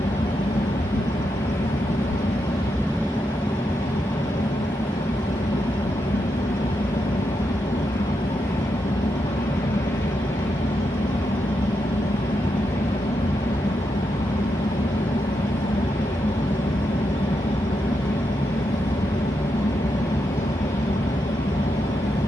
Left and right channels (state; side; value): normal; both; correlation 0.84